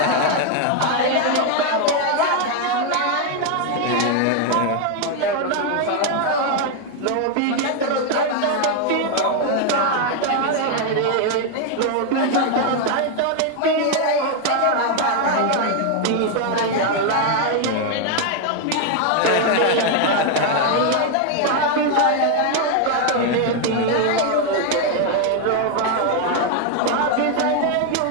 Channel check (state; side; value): different; both; correlation 0.01